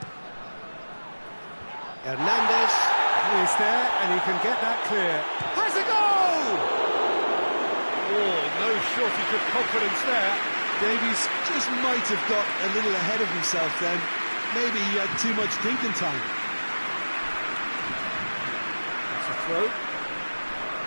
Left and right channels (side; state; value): both; inverted; correlation -1.00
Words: Hernandez is there, and he can get that clear. Has a goal! Oh, no shortage of confidence there. Davies just might have got a little ahead of himself then. Maybe he had too much thinking time. That's a throw.